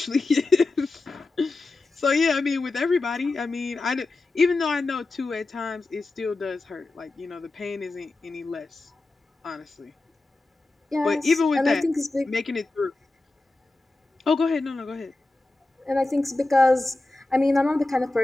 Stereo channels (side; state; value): right; quieter; 3.2 dB